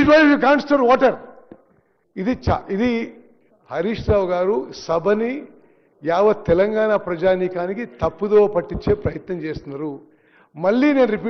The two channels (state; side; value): identical; both; correlation 1.00